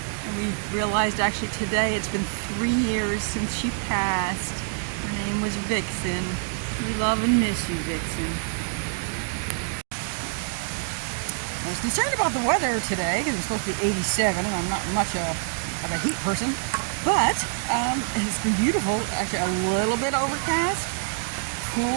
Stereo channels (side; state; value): left; silent; digital silence